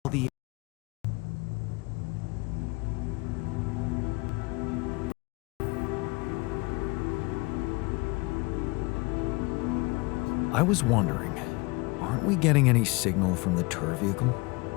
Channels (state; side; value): quieter; right; 26.2 dB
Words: the... I was wondering, aren't we getting any signal from the tour vehicle?